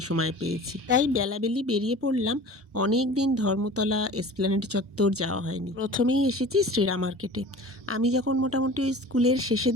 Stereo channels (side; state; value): both; normal; correlation 0.40